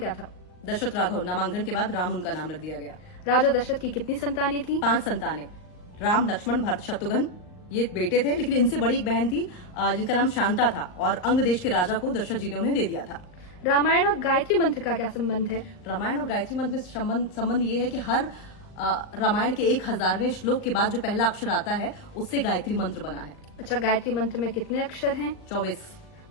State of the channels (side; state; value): right; late; 39 ms